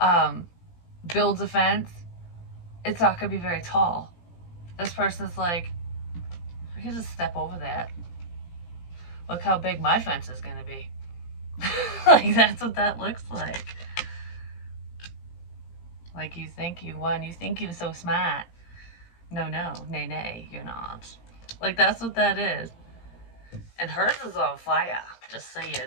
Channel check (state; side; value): late; right; 17 ms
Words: builds a fence, it's not going to be very tall. This person's like, I can just step over that. Look how big my fence is going to be. Like, that's what that looks like. Like, you think you won. You think you're so smart. No, nay, you're not. Like, that's what that is. And hers is on fire. Just